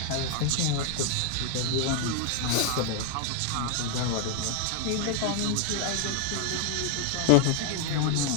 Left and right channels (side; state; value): both; different; correlation 0.00